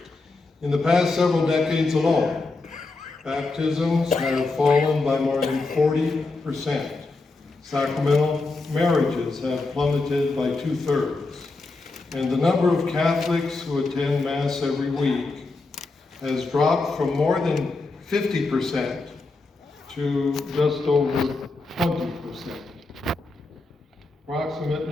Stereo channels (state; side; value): quieter; right; 3.5 dB